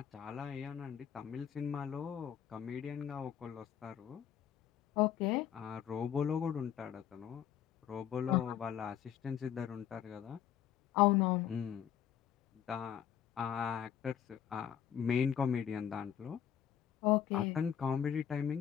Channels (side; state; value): right; quieter; 9.5 dB